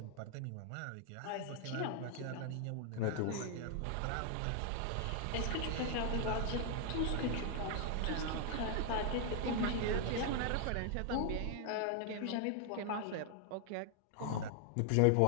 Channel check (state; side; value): different; both; correlation 0.00